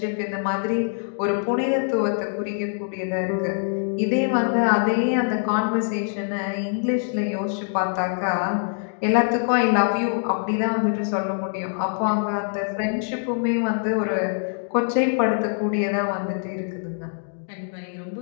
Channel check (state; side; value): silent; right; 63 dB below the other